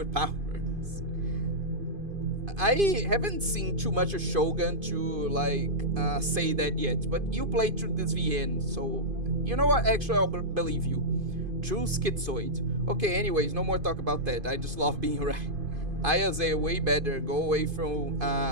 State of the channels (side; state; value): left; late; 2.5 ms